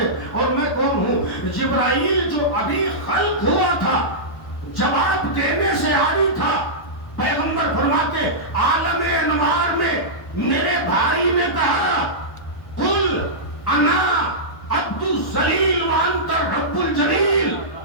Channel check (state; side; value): late; right; 1.1 ms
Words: اور میں کون ہوں۔ جبرائیل جو ابھی خلق ہوا تھا جواب دینے سے عاری تھا، پیغمبر فرماتے عالم انوار میں میرے بھائی نے کہا قل انا عبد الذلیل وانت رب الجلیل،